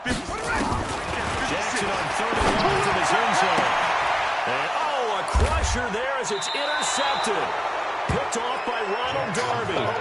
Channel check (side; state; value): both; identical; correlation 1.00